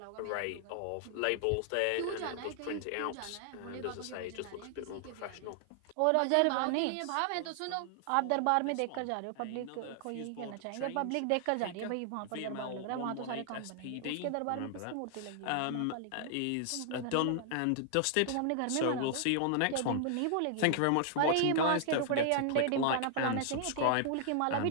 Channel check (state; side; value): different; both; correlation 0.00